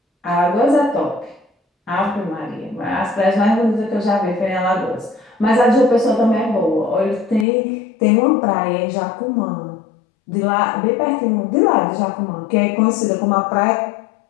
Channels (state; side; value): drops out; right; at 7.5 s